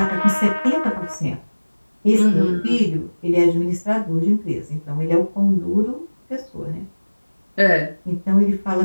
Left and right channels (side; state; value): both; inverted; correlation -1.00